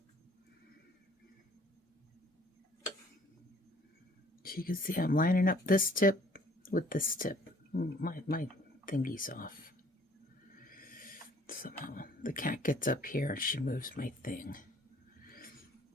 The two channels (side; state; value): both; normal; correlation 0.57